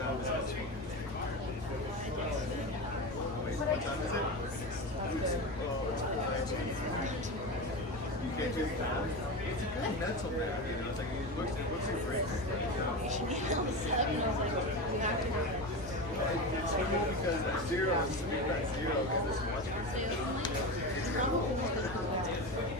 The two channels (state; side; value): normal; both; correlation 0.22